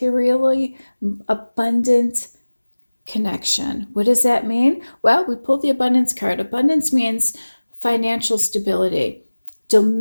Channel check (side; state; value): both; inverted; correlation -1.00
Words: abundant connection. What does that mean? Well, we pulled the abundance card. Abundance means financial stability,